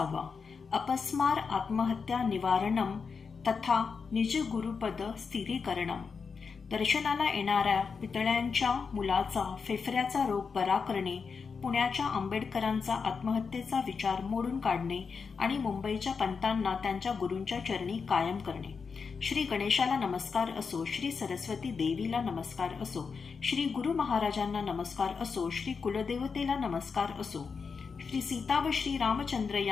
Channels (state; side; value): quieter; right; 5.4 dB